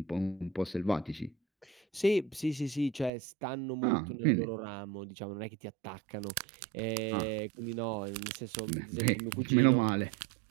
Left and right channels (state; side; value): drops out; left; at 3.1 s